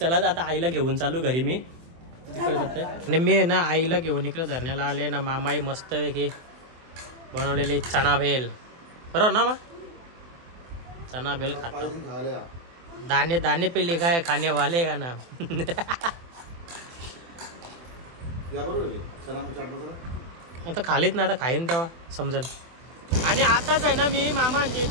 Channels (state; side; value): late; left; 24 ms